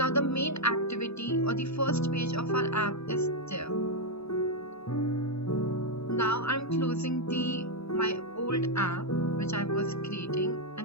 the main activity or the first page of our app is there. Now I'm closing my old app which I was creating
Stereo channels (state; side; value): late; right; 0.79 ms